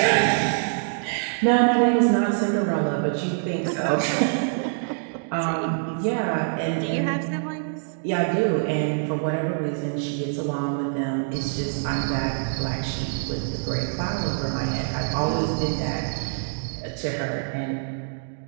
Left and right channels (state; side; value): silent; left; digital silence